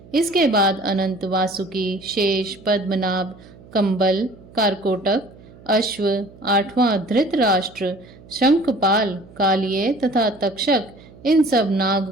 इसके बाद अनंत, वासुकी, शेष, पद्मनाभ, कंबल, कारकोटक, अश्व, 8वां धृतराष्ट्र, शंखपाल, कालिये तथा तक्षक, इन सब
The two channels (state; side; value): noise; right; hum, 22 dB below the sound